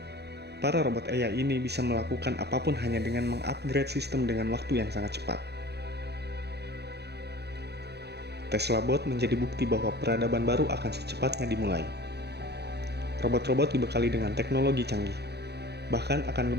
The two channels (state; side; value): late; left; 0.48 ms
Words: Para robot AI ini bisa melakukan apapun hanya dengan mengupgrade sistem dengan waktu yang sangat cepat. Tesla Bot menjadi bukti bahwa peradaban baru akan secepatnya dimulai. Robot-robot dibekali dengan teknologi canggih, bahkan akan